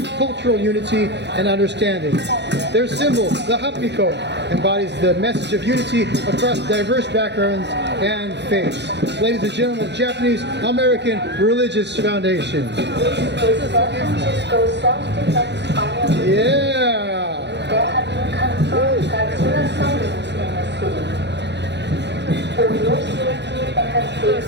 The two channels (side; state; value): left; late; 0.50 ms